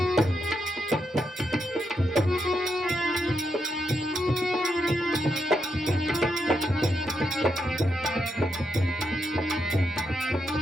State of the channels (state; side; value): normal; both; correlation 0.82